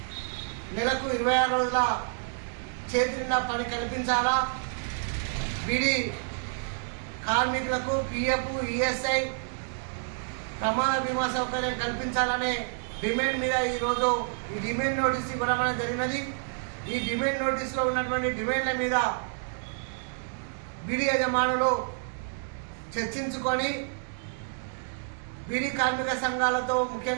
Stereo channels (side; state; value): left; silent; digital silence